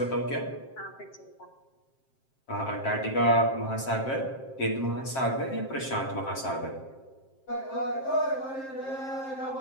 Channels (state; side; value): late; right; 7.6 ms